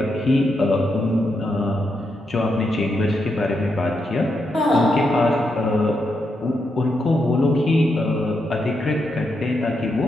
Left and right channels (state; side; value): normal; both; correlation 0.83